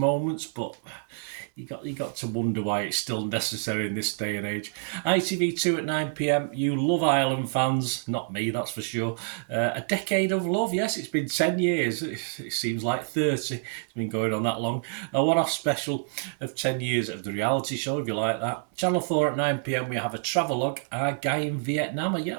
but you got to wonder why it's still necessary in this day and age. ITV2 at 9pm. You Love Island fans, not me, that's for sure. A Decade of Love, yes, it's been 10 years. It seems like 30. It's been going on that long. A one-off special of 10 years of the reality show, if you like that. Channel 4 at 9pm, we have a travelogue. Our guy in Vietnam.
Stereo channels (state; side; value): silent; left; 60 dB below the other